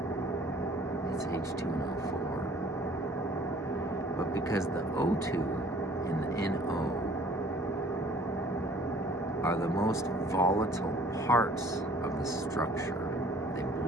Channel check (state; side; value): normal; both; correlation 0.54